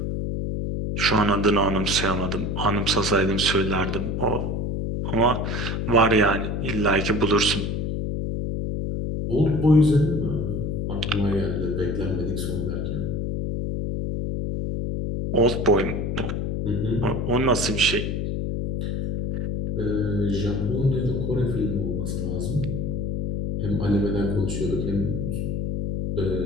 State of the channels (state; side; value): noise; left; hum, 1 dB below the sound